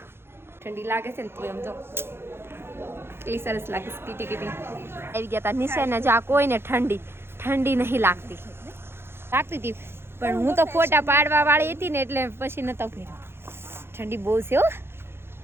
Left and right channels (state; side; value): late; left; 0.11 ms